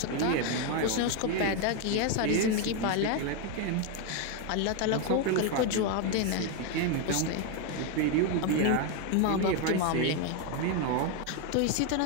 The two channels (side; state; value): both; different; correlation 0.01